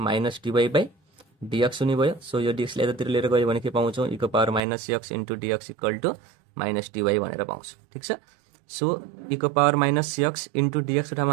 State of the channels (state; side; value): drops out; left; at 4.6 s